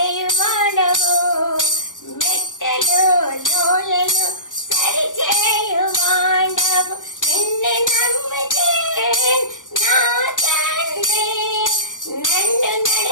మెట్టలు లోయలు సరిచేయువాడవు. నిన్ను నమ్మితే నా తండ్రి, నన్ను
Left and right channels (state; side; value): late; right; 0.88 ms